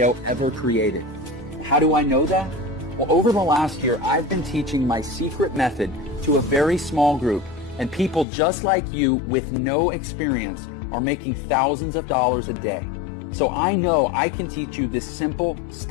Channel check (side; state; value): right; drops out; at 8.2 s